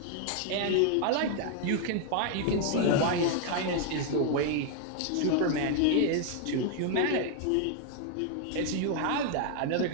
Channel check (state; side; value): different; both; correlation 0.00